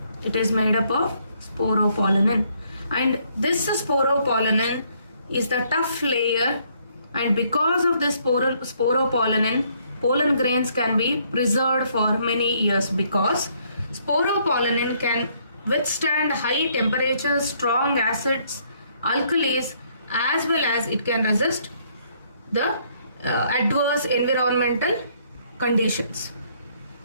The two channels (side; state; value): both; inverted; correlation -0.68